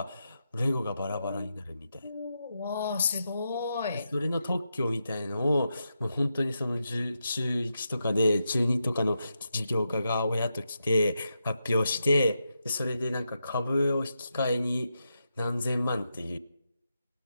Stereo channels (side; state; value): both; inverted; correlation -0.86